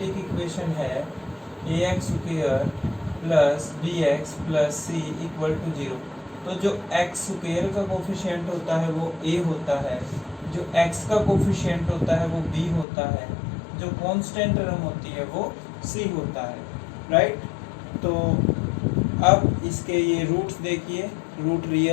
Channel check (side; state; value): right; drops out; at 12.9 s